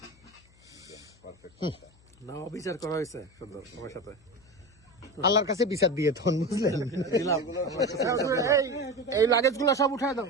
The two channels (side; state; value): left; noise; hum, 29 dB below the sound